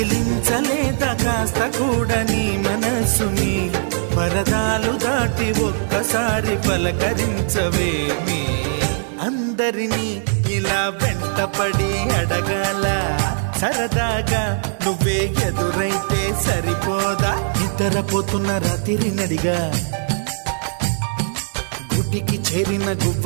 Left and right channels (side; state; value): left; silent; 66 dB below the other